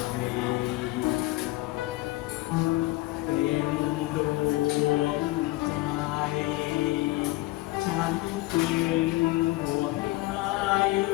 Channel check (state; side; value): quieter; right; 19.3 dB